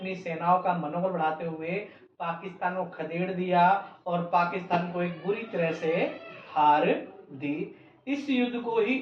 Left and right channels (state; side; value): identical; both; correlation 1.00